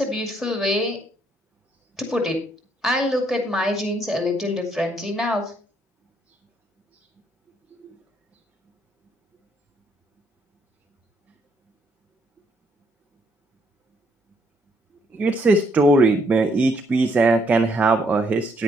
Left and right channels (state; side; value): normal; both; correlation 0.71